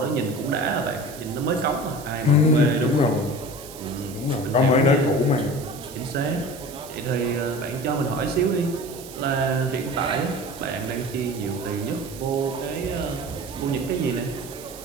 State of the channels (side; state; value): right; noise; hiss, 16 dB below the sound